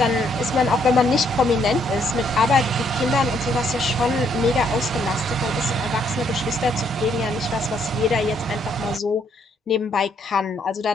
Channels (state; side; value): normal; both; correlation 0.70